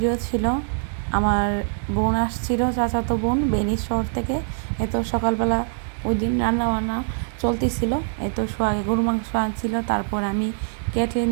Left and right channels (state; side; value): silent; left; digital silence